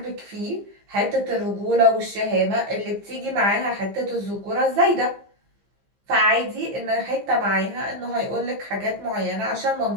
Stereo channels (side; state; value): left; late; 15 ms